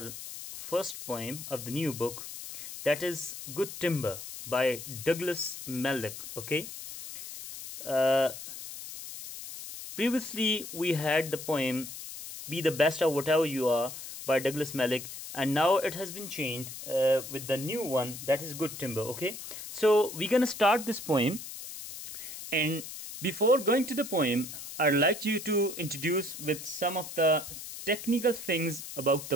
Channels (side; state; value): left; noise; hiss, 10 dB below the sound